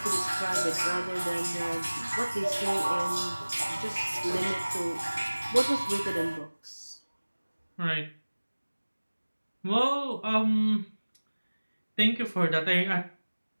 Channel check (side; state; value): both; inverted; correlation -1.00